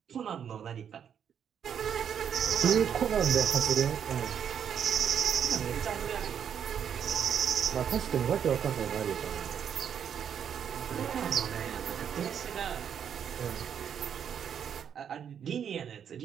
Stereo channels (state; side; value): quieter; left; 8.3 dB